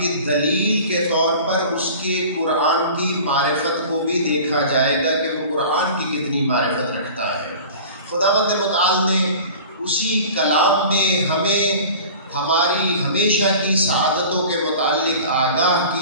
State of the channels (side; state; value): both; inverted; correlation -0.40